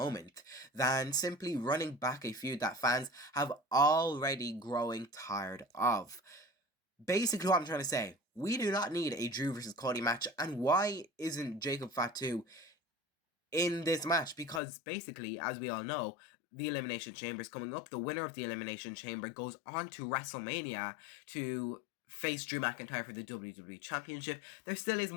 than simply running back a feud that fans have already growing tired of. Basically what I'm trying to say, we do not need a Drew versus Cody match, and why isn't Jacob Fatu in this match? Because basically, as we all know, the Elimination Chamber is coming up. The winner of the Elimination Chamber goes on to WrestleMania to face Drew McIntyre for the WWE Championship. There still is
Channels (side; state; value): right; drops out; at 14.6 s